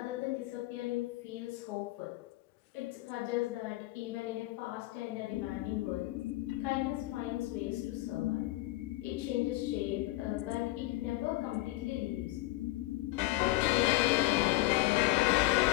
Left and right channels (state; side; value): quieter; right; 18.6 dB